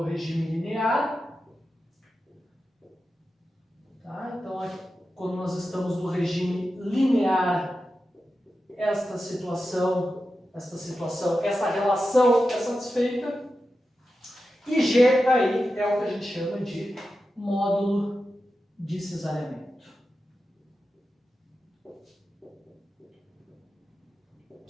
regime linear. Tá? Então, quando nós estamos no regime linear, esta relação é satisfeita. E G aí é o que a gente chama de módulo de cesariamento.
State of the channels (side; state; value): both; normal; correlation 0.91